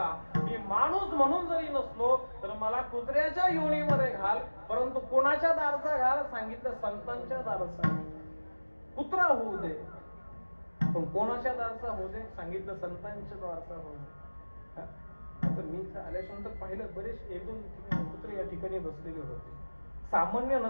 मी माणूस म्हणून जरी नसलो तर मला कुत्र्याच्या योनीमध्ये घाल, परंतु कोणाच्या दारचा घाल, सांगितलं संतांच्या दारचा. कुत्रा होऊ दे पण कोणाच्या दारचा होऊ दे, सांगितलं संतांच्या दारचा होऊ दे. तर मी आल्याच्यानंतर पाहिलं बरेच 1-2 कुत्रे या ठिकाणी बसलेले होते. सामान्य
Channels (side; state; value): both; inverted; correlation -1.00